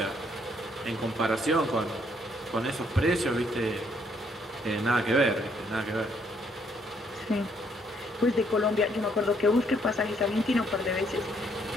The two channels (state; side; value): normal; both; correlation 0.69